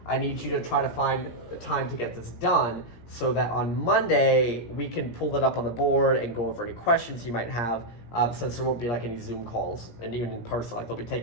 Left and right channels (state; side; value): late; right; 17 ms